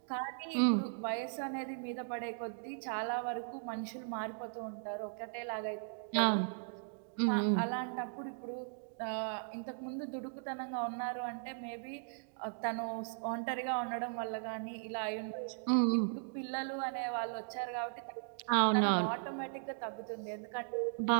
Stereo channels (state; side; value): silent; left; digital silence